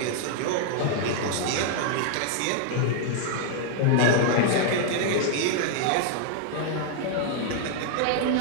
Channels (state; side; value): different; both; correlation 0.00